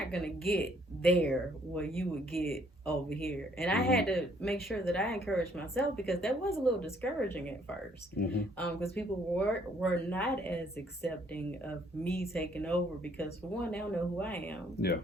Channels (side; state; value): both; normal; correlation 0.65